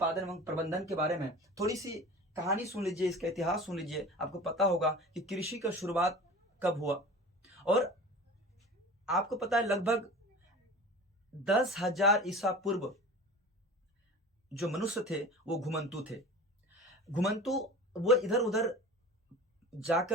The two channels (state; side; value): normal; both; correlation 0.37